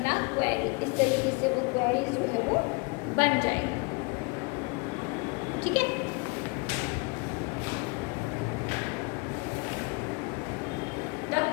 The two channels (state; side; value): quieter; right; 29.0 dB